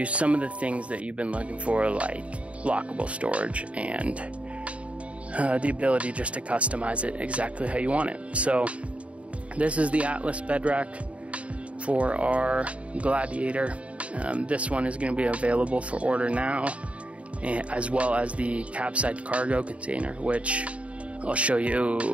some of the things that you've been looking for, like lockable storage and the ability just to customize it exactly how you want it. So this is the ATLS Bed Rack for our Gladiator. This one is going to be available for order now, as well as the capside cargo container, which I'll show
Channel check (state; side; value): late; left; 0.064 ms